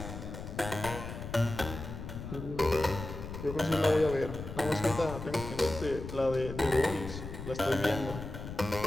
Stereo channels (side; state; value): left; noise; rumble, 9 dB below the sound